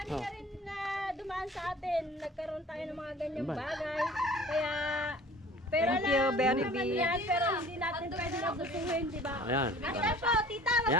Oh. na rin na dumaan sa atin. Nagkaroon tayo ng mga ganyang Sambal. bagay. Kaya, pera Thank you, lang very naman big. yan, pero hindi natin pwede nagustuhin, di ba? Ayan. Ayan po, tita,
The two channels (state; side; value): normal; both; correlation 0.47